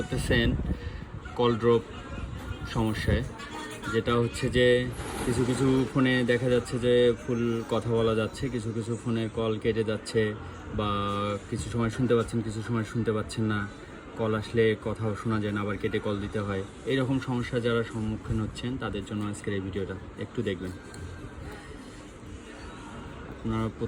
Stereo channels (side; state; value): both; identical; correlation 1.00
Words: কল ড্রপ সমস্যায়। যেটা হচ্ছে যে কিছু কিছু ফোনে দেখা যাচ্ছে যে ফুল কথা বলা যাচ্ছে, কিছু কিছু ফোনের কল কেটে যাচ্ছে, বা কিছু সময় শুনতে পাচ্ছেন, কিছু সময় শুনতে পাচ্ছেন না। কল আসলে কথাও শোনা যায় না, আবার কেটে কল দিতে হয়। এইরকম সমস্যা যারা সম্মুখীন হচ্ছেন তাদের জন্য আজকের এই ভিডিওটা একটু দেখবেন। আপনারা